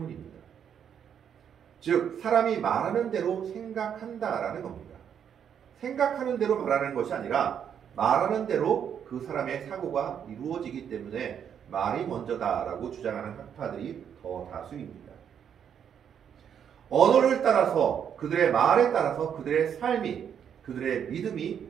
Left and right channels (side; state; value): left; quieter; 8.3 dB